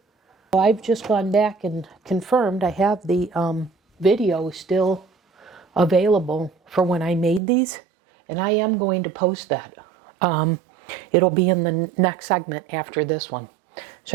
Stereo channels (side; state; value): left; drops out; at 7.4 s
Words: I've just gone back and confirmed I have the video still available for when I made these, and I am going to post that. It'll be in the next segment after this one.